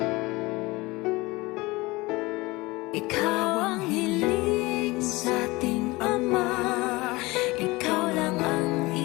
Ikaw ang hiling sa ating Ama, ikaw lang ang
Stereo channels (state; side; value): quieter; right; 22.2 dB